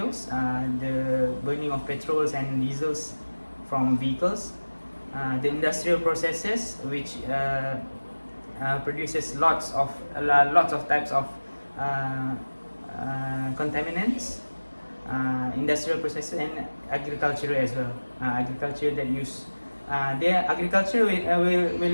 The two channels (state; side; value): inverted; both; correlation -1.00